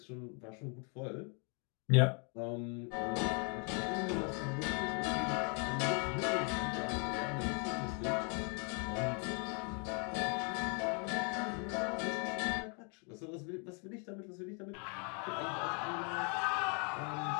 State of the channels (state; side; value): quieter; right; 37.3 dB